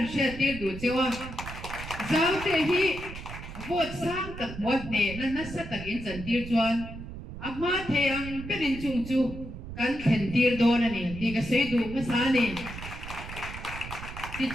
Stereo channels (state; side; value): noise; right; rumble, 11 dB below the sound